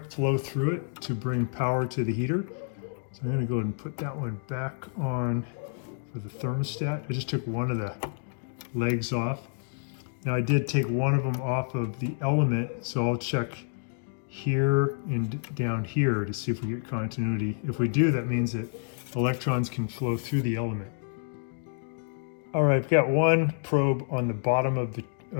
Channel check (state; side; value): silent; right; digital silence